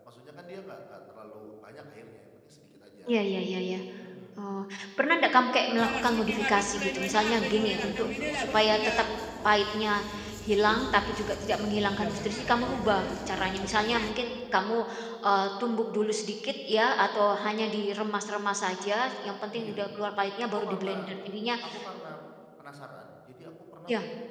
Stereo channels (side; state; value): both; identical; correlation 1.00